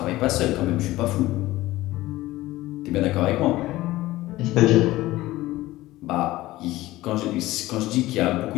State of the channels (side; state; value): right; quieter; 17.3 dB